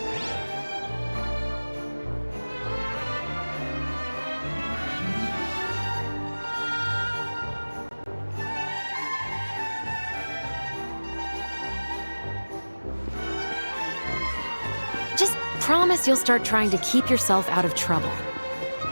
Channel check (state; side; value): inverted; both; correlation -1.00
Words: promise you'll start trying to keep yourself out of trouble.